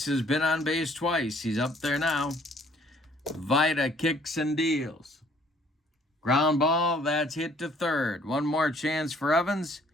has been on base twice. He's up there now. Vita kicks and deals. Ground ball, that's hit to third. One more chance for Evans.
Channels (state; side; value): normal; both; correlation 0.60